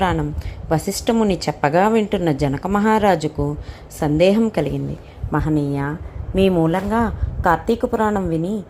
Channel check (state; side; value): identical; both; correlation 1.00